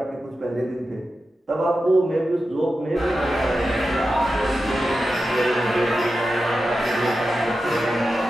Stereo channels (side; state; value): both; normal; correlation 0.91